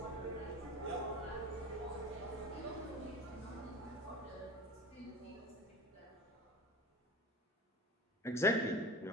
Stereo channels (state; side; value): normal; both; correlation 0.33